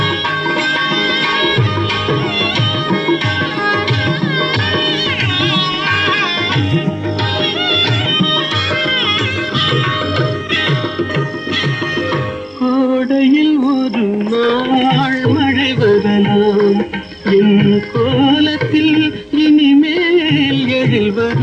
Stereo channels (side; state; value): both; identical; correlation 1.00